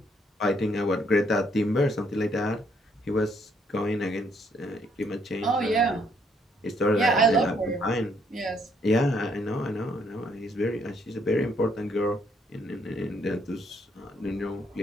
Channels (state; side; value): normal; both; correlation 0.70